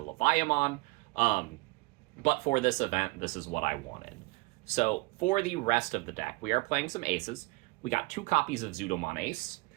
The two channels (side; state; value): left; quieter; 24.5 dB